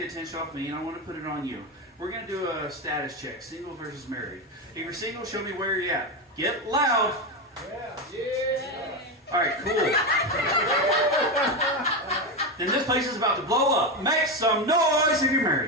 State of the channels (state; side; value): normal; both; correlation 0.13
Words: attention off me, and I want to put it on you. We're going to do a status check, single versus married. If you're single, show me where you're at. Get loud. Yeah. All right, cool. Then this place is about to blow up. Make some noise if you're